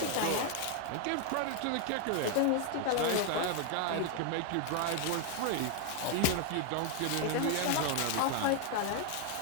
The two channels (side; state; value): both; different; correlation 0.00